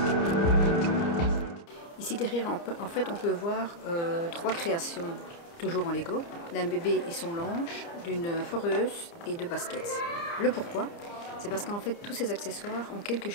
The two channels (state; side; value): late; right; 29 ms